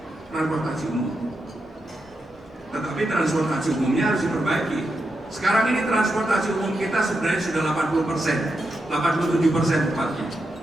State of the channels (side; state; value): both; normal; correlation 0.86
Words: transportasi umum. Tetapi transportasi umumnya harus diperbaiki. Sekarang ini transportasi umum kita sebenarnya sudah 80%, 87% tepatnya.